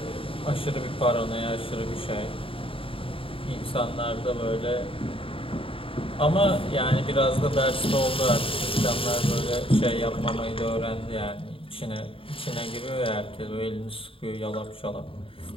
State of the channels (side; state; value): right; late; 0.26 ms